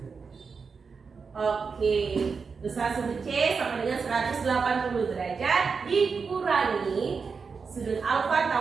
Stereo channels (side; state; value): left; quieter; 5.2 dB